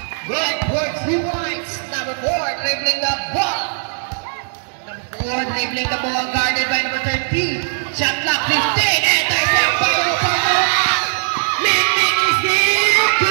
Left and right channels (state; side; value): silent; left; digital silence